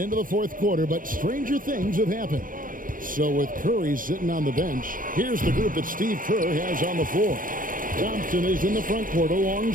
the fourth quarter, but stranger things have happened. So with Curry sitting on the bench, here's the group that Steve Kerr has on the floor. Thompson is in the front court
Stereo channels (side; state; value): left; late; 0.40 ms